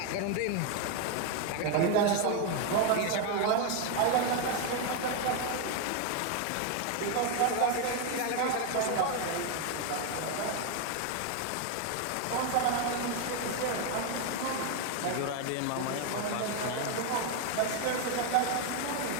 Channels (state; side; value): different; both; correlation 0.01